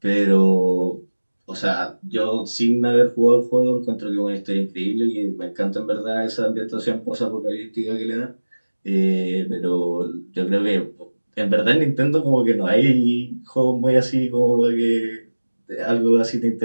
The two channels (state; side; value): inverted; both; correlation -1.00